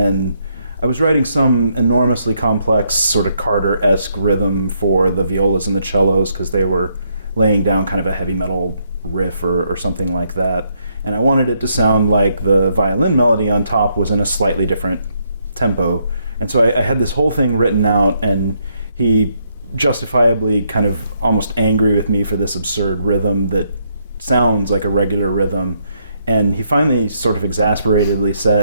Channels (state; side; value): inverted; both; correlation -0.75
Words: I was writing some enormously complex, sort of Carter-esque rhythm for the violas and the cellos because they were laying down kind of a heavy metal riff or something like that. And I wanted it to sound like the violin melody on top was in a slightly different tempo. And so I had this whole thing written out, and he justifiably kind of almost angry with me for this absurd rhythm that sounds like a regular rhythm. And he finally sort of exasperatedly